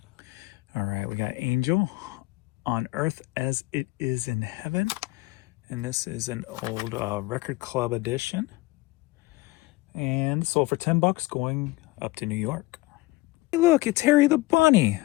All right, we got Angel, On Earth as It Is in Heaven. And this is an old record club edition. And sold for $10, going up to New York. Hey, look, it's Harry the Bunny.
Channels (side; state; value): right; quieter; 21.0 dB